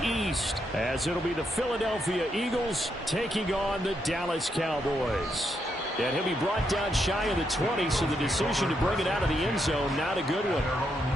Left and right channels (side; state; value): both; normal; correlation 0.79